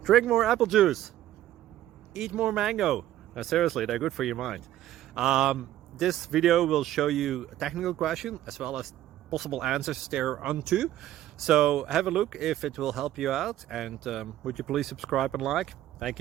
Drink more apple juice. Eat more mango. No, seriously, they're good for your mind. This video will show you a technical question as well as possible answers thereunto. So have a look if it will help you out, and would you please subscribe and like? Thank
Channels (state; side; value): quieter; left; 13.2 dB